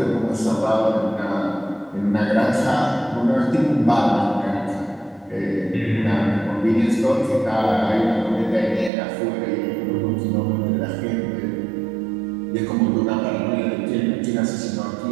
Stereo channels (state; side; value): drops out; left; at 8.9 s